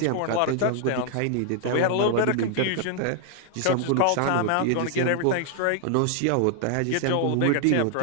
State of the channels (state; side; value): different; both; correlation 0.00